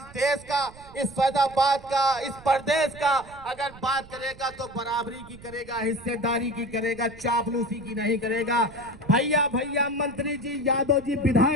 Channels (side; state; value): right; noise; rumble, 20 dB below the sound